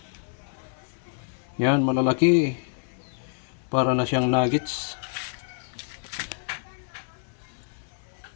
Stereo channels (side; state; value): right; silent; 59 dB below the other